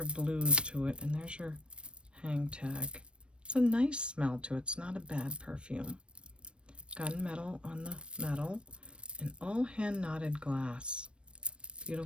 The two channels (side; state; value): left; late; 0.058 ms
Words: blues to it, and there's your hang tag. It's a nice smell to it. It's not a bad perfume. Gunmetal on the metal, and all hand knotted glass.